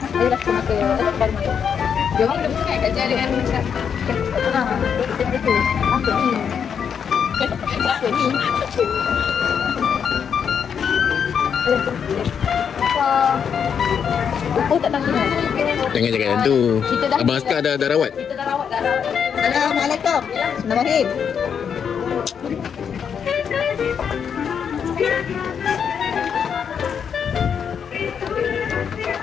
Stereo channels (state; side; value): quieter; right; 7.3 dB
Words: Dia dah kena ke baru main. Dia orang dah bukan kat jalan dengan macam itu. Apa ni? Apa ni? Oh, tak tahu. Jangan cakap yang tu. Abang Askar dah rawat. Kita dah rawat. Assalamualaikum. Bismillahirrahmanirrahim.